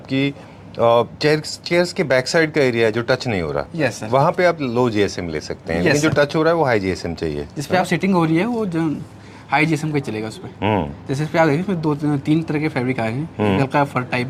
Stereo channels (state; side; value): identical; both; correlation 1.00